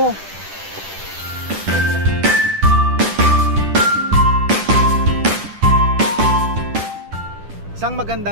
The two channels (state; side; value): late; left; 10 ms